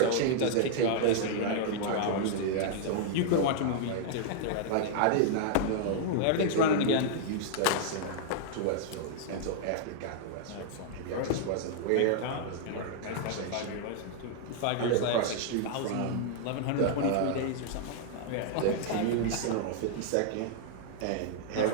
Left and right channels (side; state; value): both; different; correlation -0.01